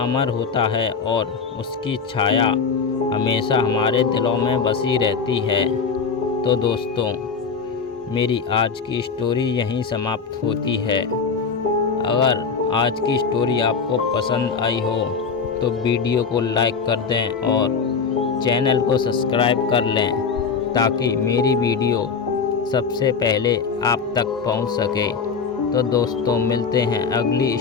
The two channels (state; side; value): quieter; right; 5.5 dB